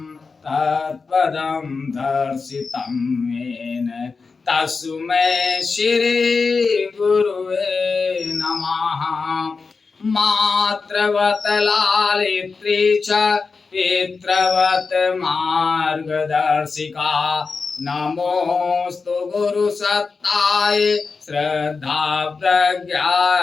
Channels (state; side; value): quieter; right; 4.6 dB